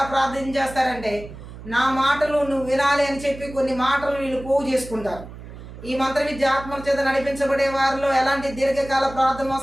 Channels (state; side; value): noise; right; hum, 14 dB below the sound